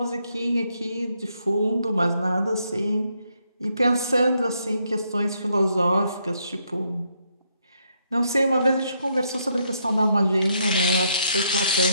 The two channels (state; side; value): inverted; both; correlation -0.75